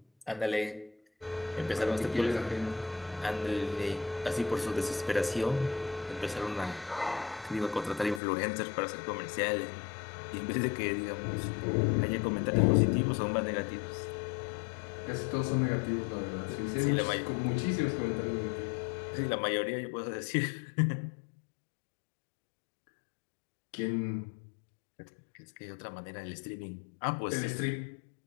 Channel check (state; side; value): drops out; right; at 8.2 s